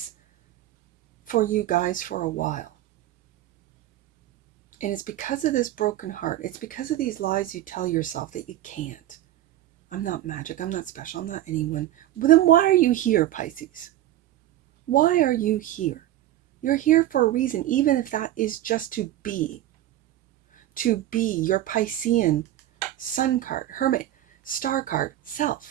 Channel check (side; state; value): left; quieter; 13.7 dB